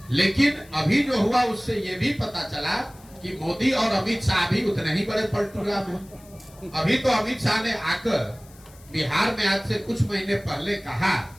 लेकिन अभी जो हुआ उससे ये भी पता चला कि मोदी और अमित शाह भी उतने ही बड़े पलटू राम हैं। अभी तो अमित शाह ने आकर बिहार में आज से कुछ महीने पहले कहा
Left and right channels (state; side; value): noise; left; hiss, 25 dB below the sound